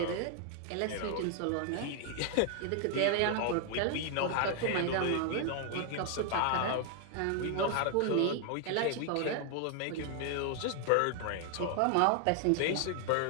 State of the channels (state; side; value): different; both; correlation 0.00